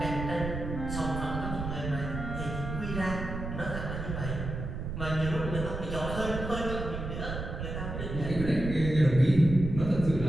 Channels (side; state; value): right; noise; rumble, 5 dB below the sound